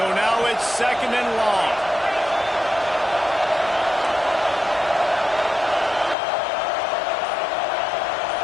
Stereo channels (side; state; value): right; drops out; at 6.2 s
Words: now it's second and long.